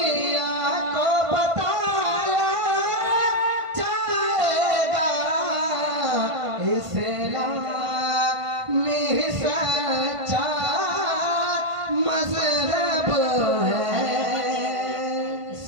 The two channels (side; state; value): left; late; 1.5 ms